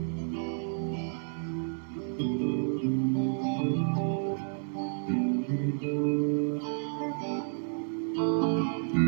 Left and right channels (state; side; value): silent; left; digital silence